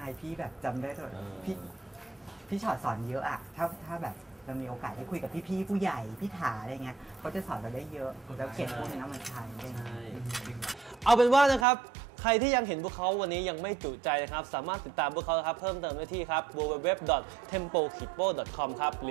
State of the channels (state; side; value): drops out; left; at 11.7 s